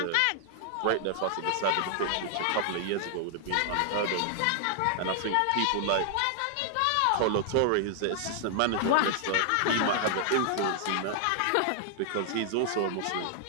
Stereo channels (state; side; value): different; both; correlation 0.00